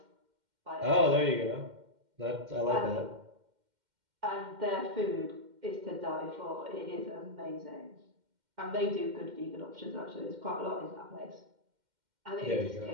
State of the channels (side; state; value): left; late; 2.1 ms